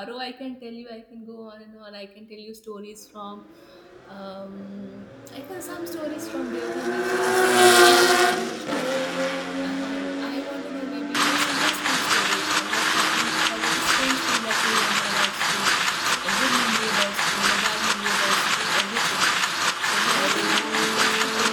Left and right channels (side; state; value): both; identical; correlation 1.00